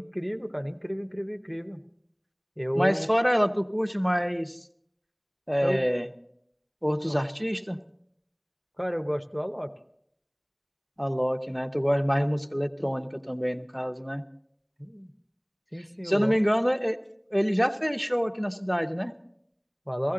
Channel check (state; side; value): identical; both; correlation 1.00